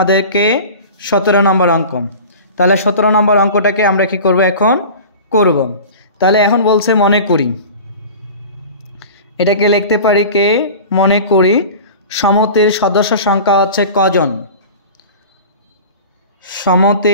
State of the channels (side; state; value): both; inverted; correlation -0.36